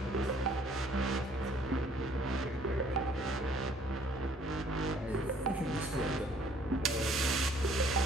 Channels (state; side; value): normal; both; correlation 0.60